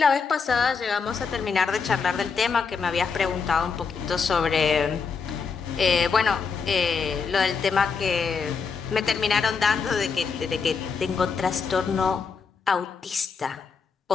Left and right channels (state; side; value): quieter; right; 5.4 dB